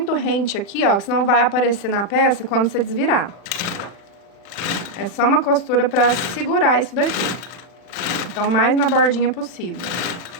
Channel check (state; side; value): late; right; 40 ms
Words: rente aqui, ó, que senão vai aparecer na peça quando você desvirar. É só uma costura pra segurar isso daqui. Então, mais na bordinha possível.